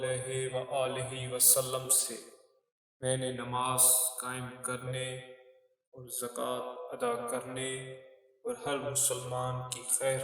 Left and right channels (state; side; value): identical; both; correlation 1.00